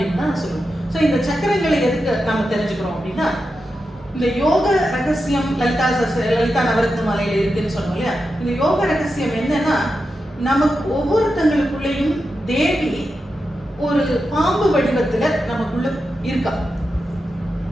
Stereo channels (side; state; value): both; normal; correlation 0.89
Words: தான் சொல்லுவோம். ஸோ இந்த சக்கரங்களை எதுக்கு நம்ம தெரிஞ்சுக்கிறோம் அப்படின்னா, இந்த யோக ரகசியம் லலிதா நவரத்ன மாலையில இருக்குன்னு சொன்னோம் இல்லையா? இந்த யோக ரகசியம் என்னன்னா, நமக்கு ஒவ்வொருத்தங்களுக்குள்ளேயும் தேவி ஒரு பாம்பு வடிவத்துல நமக்குள்ள இருக்கா.